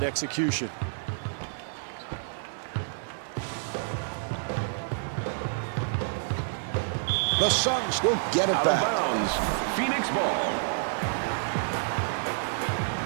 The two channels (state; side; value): silent; left; digital silence